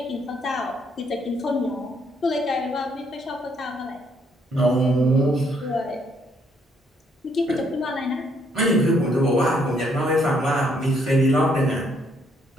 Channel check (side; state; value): both; normal; correlation 0.70